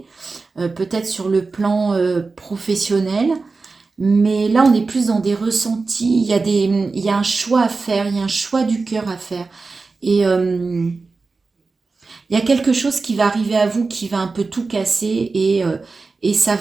Peut-être sur le plan professionnel. Mais là, on est plus dans des ressentis. Il y a un choix à faire. Il y a un choix du cœur à faire. Et il y a quelque chose qui va arriver à vous qui va un peu tout casser et ça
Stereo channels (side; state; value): left; quieter; 4.0 dB